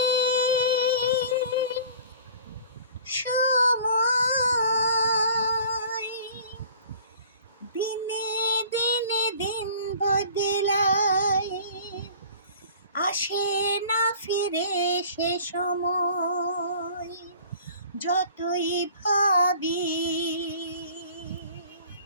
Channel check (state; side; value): inverted; both; correlation -0.47